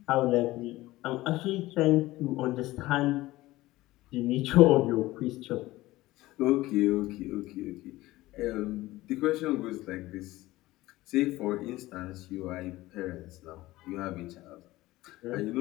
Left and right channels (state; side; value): quieter; right; 17.9 dB